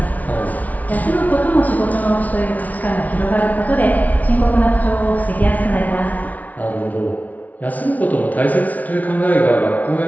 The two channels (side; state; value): right; late; 0.073 ms